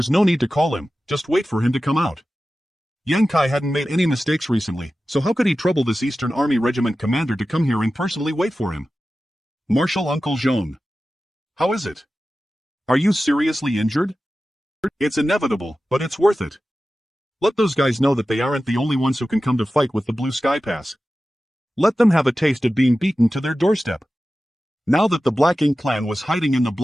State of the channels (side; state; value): both; normal; correlation 0.94